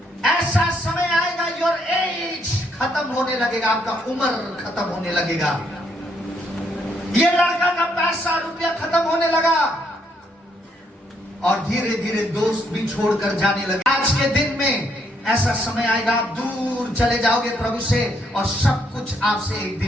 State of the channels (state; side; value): normal; both; correlation 0.72